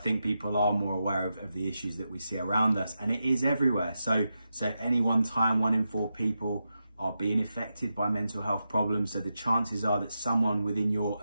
people are more aware of the issues that we see around us, and it is everywhere. So at any one time, 1 in 4 people are being affected by mental health problems. So the chances are that someone within your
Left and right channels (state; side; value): inverted; both; correlation -0.88